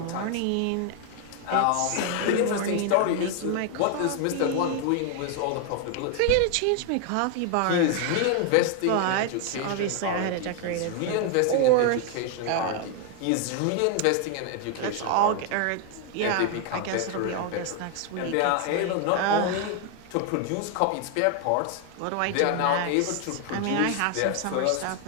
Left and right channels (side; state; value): both; different; correlation 0.00